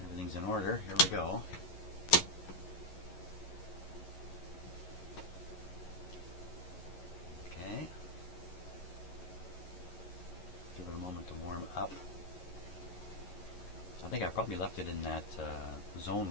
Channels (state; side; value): late; right; 11 ms